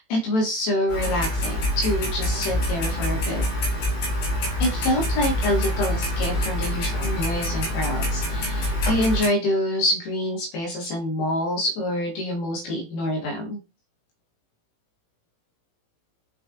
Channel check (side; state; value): right; late; 18 ms